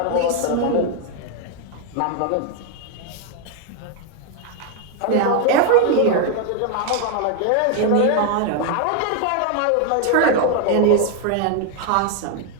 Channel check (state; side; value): different; both; correlation 0.00